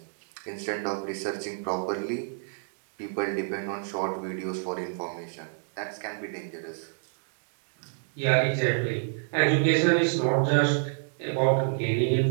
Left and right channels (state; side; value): silent; left; digital silence